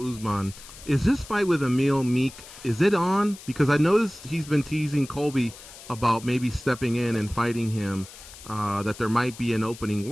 Usman, is this fight with Emil Meek, is it on? Because I noticed he's been teasing Colby about maybe stepping in and fighting him, that there might be an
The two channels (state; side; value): noise; left; hiss, 17 dB below the sound